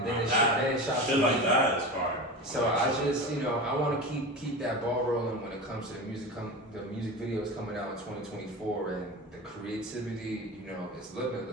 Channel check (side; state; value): both; normal; correlation 0.28